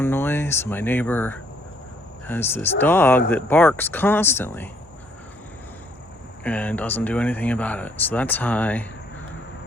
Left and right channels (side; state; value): both; normal; correlation 0.66